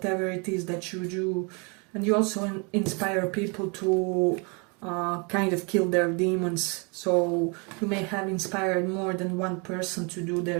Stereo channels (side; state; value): left; quieter; 32.8 dB